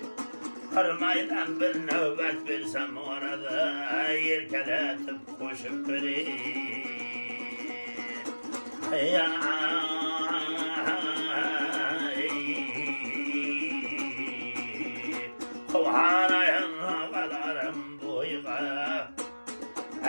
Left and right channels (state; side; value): inverted; both; correlation -1.00